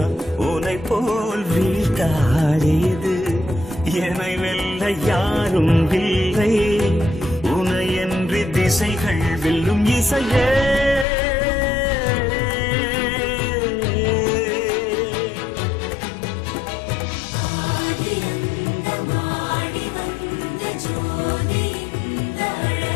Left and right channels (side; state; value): right; drops out; at 11.1 s